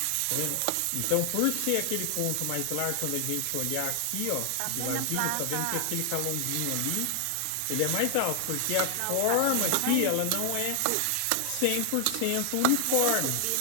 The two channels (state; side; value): different; both; correlation 0.00